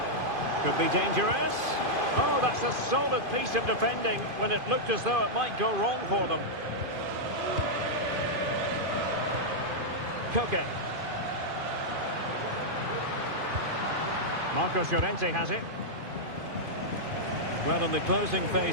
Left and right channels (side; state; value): left; late; 2.5 ms